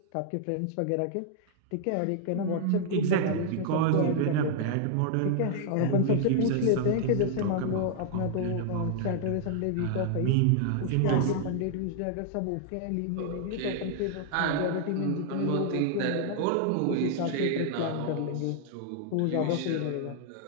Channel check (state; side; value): different; both; correlation -0.01